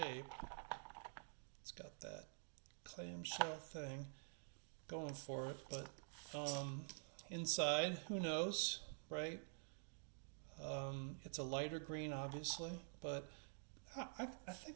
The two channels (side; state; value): left; silent; digital silence